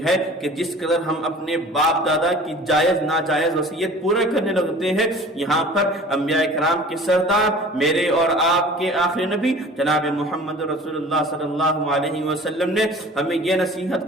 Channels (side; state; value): both; normal; correlation 0.45